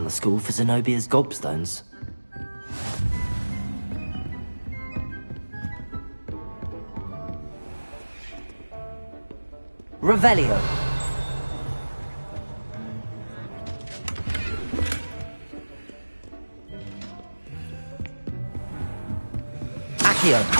the school for Zenobia's gobstones. Revelio.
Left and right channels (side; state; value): both; inverted; correlation -1.00